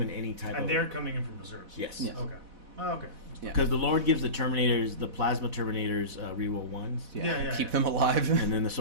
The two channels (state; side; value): late; left; 4.1 ms